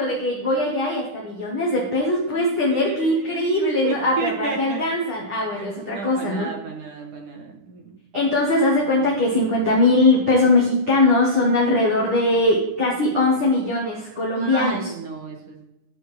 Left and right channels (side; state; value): left; late; 9.9 ms